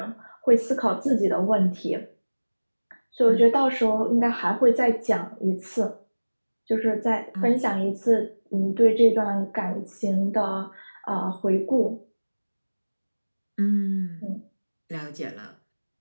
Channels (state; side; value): inverted; both; correlation -1.00